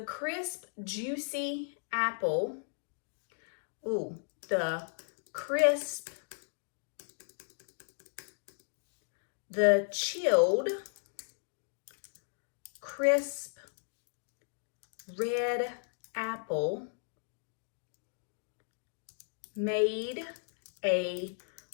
crisp, juicy apple. The crisp, the chilled, crisp, red apple made a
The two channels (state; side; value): silent; right; digital silence